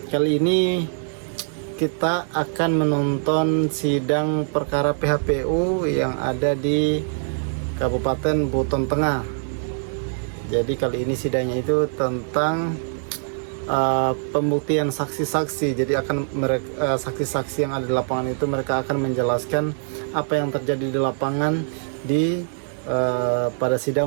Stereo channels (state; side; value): silent; left; digital silence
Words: Kali ini kita akan menonton sidang perkara PHPU yang ada di Kabupaten Buton Tengah. Jadi kali ini sidangnya itu tentang pembuktian saksi-saksi. Jadi akan mereka saksi-saksi yang ada di lapangan itu mereka akan menjelaskan apa yang terjadi di lapangan pada